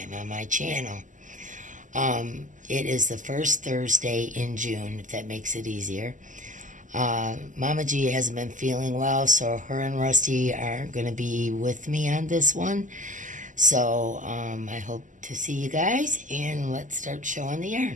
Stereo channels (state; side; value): late; left; 0.37 ms